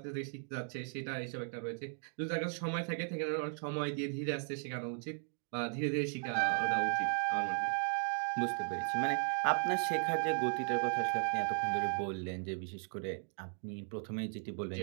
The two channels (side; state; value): left; silent; 53 dB below the other